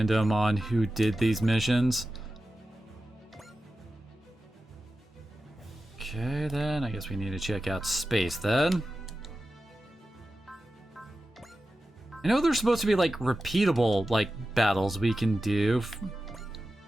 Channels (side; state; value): both; normal; correlation 0.93